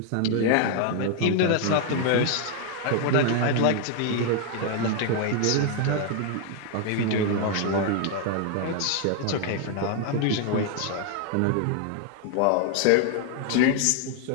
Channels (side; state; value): both; different; correlation 0.00